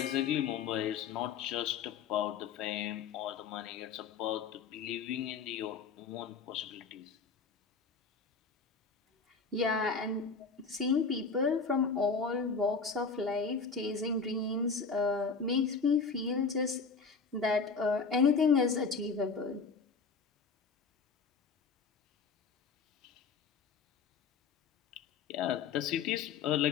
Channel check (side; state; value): right; quieter; 5.3 dB